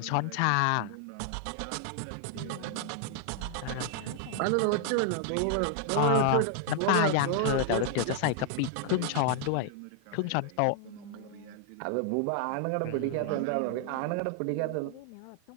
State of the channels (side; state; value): both; different; correlation 0.00